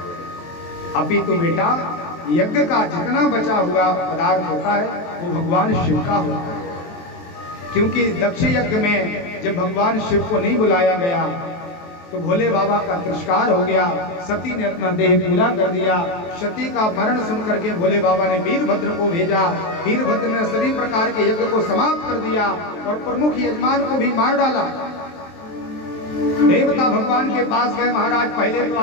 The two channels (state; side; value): late; right; 23 ms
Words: अभी तो बेटा यज्ञ का जितना बचा हुआ पदार्थ होता है वो भगवान शिव का होता है, क्योंकि दक्ष यज्ञ में जब भगवान शिव को नहीं बुलाया गया तो भोले बाबा का तिरस्कार हो गया। सती ने अपना देह पूरा कर दिया। सती का मरण सुनकर के भोले बाबा ने वीरभद्र को भेजा। वीरभद्र ने सभी प्रकार के यज्ञ को समाप्त कर दिया और प्रमुख यजमान को भी मार डाला। देवता भगवान के पास गए, महाराज पहले तो